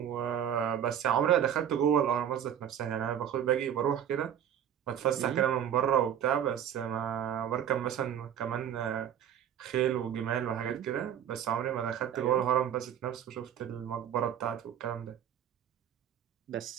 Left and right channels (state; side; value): quieter; left; 9.5 dB